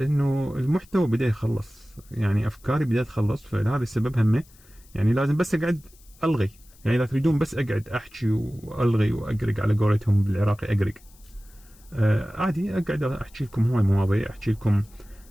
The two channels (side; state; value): left; noise; hiss, 27 dB below the sound